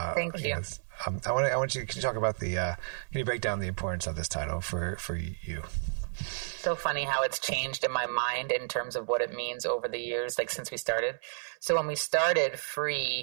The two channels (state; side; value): silent; left; 57 dB below the other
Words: Thank you. I want you to talk about can you break down the importance of this title for you? So funny how it's changed in my mind in terms of what it means over the years, since we started. So when we started,